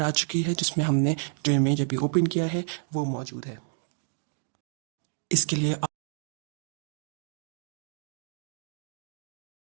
आ चुकी है, जिसमें हमने जो इमेज अभी ओपन किया है वो मौजूद है। इसके लिए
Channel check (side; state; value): left; silent; digital silence